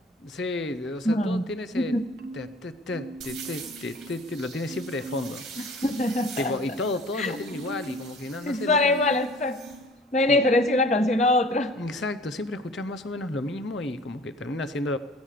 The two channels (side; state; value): both; normal; correlation 0.48